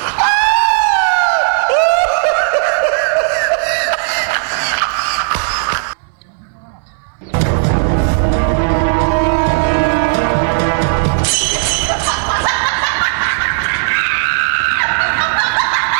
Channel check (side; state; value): left; silent; digital silence